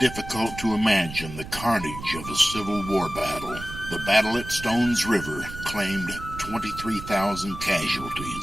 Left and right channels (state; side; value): noise; right; rumble, 11 dB below the sound